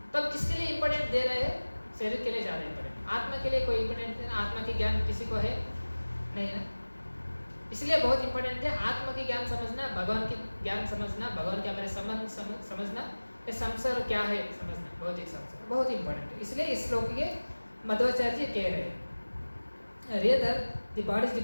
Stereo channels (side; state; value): both; inverted; correlation -1.00